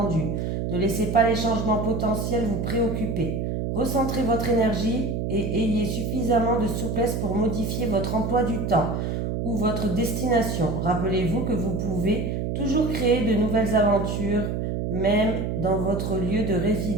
Ne laissez pas les changements potentiels vous préoccuper. Recentrez votre énergie et ayez suffisamment de souplesse pour modifier votre emploi du temps ou votre destination. Rappelez-vous que vous pouvez toujours créer de nouvelles aventures, même dans votre lieu de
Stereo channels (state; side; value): noise; right; hum, 1 dB below the sound